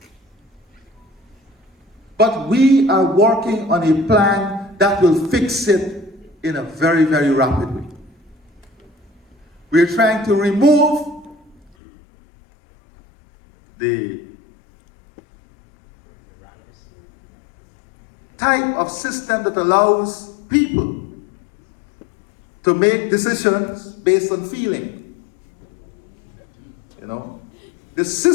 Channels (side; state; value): right; drops out; at 11.7 s